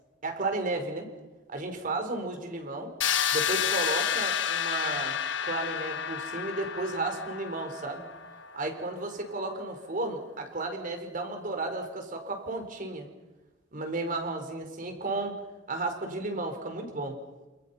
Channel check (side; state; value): both; normal; correlation 0.03